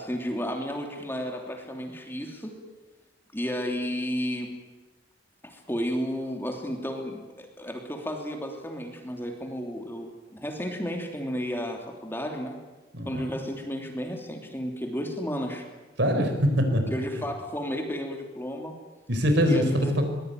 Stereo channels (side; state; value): both; normal; correlation 0.68